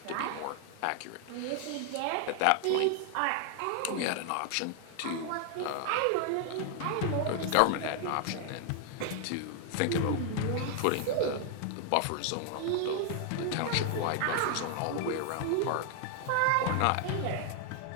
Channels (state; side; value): different; both; correlation 0.00